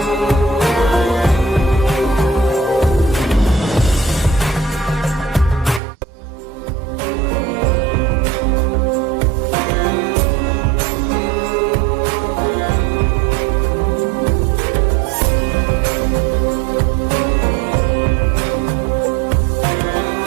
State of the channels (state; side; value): drops out; left; at 5.8 s